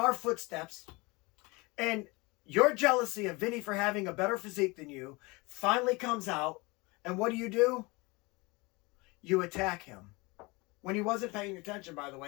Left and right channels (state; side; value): quieter; right; 25.3 dB